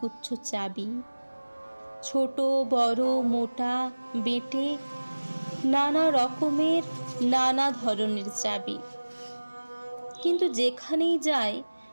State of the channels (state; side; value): inverted; both; correlation -1.00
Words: চাবি, ছোট বড় মোটা বেঁটে নানা রকমের নানা ধরনের চাবি। কিন্তু যেখানেই যাই